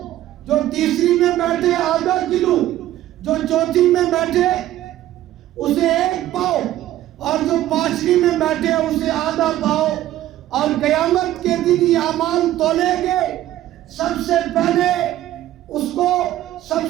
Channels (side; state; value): left; quieter; 13.8 dB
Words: جو تیسری میں بیٹھے آدھا کلو، جو چوتھی میں بیٹھے اسے 1 پاؤ، اور جو 5ویں میں بیٹھے اسے آدھا پاؤ۔ اور قیامت کے دن یہ اعمال تولے گے، سب سے پہلے